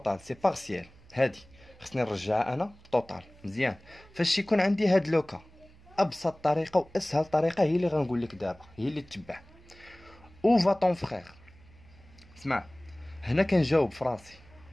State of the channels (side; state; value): right; noise; hum, 25 dB below the sound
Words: سي بارسيال. هادي خصني نرجعها انا توتال. مزيان، فاش يكون عندي هاد لوكا ابسط طريقه واسهل طريقه هي اللي غنقول لك دابا، هي اللي تتبع. او va ton frère، اسمع هنا كنجاوب فراسي.